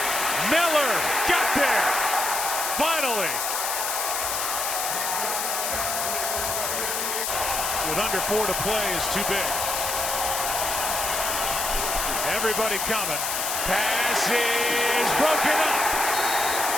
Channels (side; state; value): left; noise; hiss, 1 dB below the sound